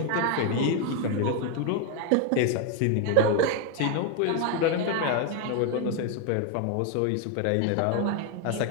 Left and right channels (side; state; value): both; different; correlation 0.01